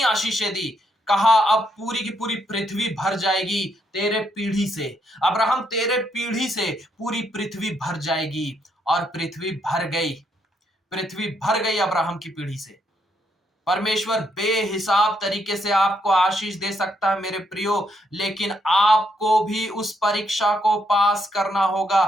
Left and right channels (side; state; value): both; normal; correlation 0.75